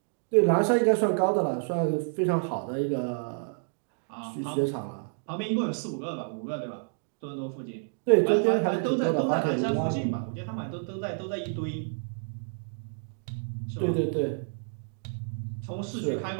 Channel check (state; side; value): silent; left; digital silence